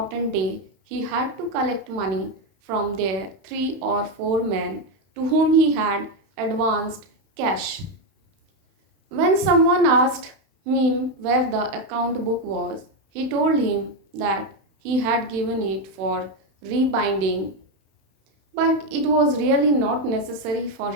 day. He had to collect money from their 3 or 4 men to whom he had advanced cash. When someone asked him where the account book was, he told him that he had given it for rebinding, but it was really not necessary for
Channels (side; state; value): left; late; 31 ms